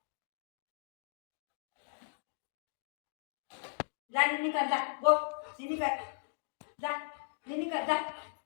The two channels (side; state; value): right; silent; digital silence